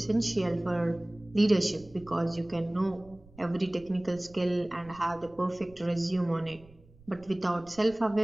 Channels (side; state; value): right; noise; rumble, 24 dB below the sound